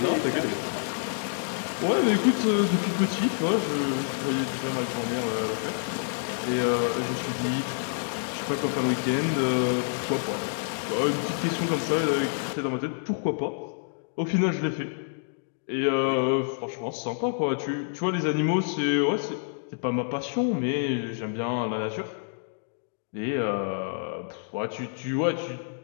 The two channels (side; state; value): right; silent; digital silence